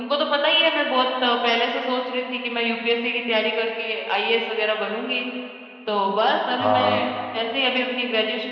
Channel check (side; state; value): both; identical; correlation 1.00